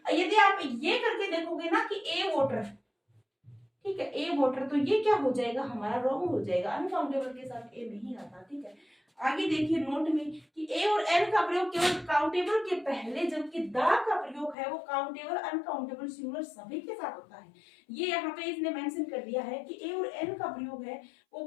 यदि आप ये करके देखोगे ना कि ए वाटर, ठीक है, ए वाटर, तो ये क्या हो जाएगा? हमारा रॉन्ग हो जाएगा, अनकाउंटेबल के साथ ए नहीं आता। ठीक है, आगे देखिए नोट में कि ए और एन का प्रयोग केवल काउंटेबल के पहले, जबकि दा का प्रयोग है वो काउंटेबल, अनकाउंटेबल, सिंगुलर सभी के साथ होता है। ये यहाँ पे इसने मेंशन कर दिया है कि ए और एन का प्रयोग है वो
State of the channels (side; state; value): right; drops out; at 14.6 s